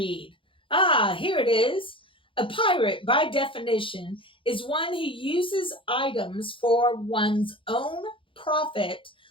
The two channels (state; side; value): late; right; 0.25 ms